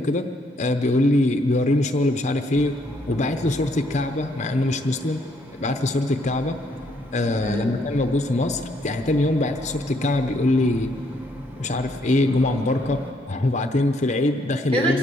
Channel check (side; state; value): both; normal; correlation 0.70